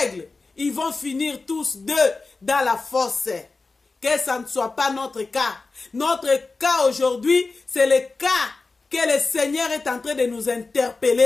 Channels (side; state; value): right; quieter; 3.8 dB